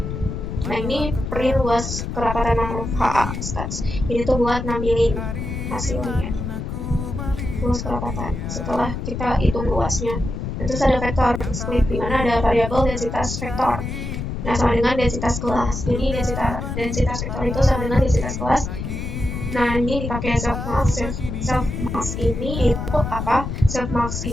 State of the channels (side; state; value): left; noise; rumble, 5 dB below the sound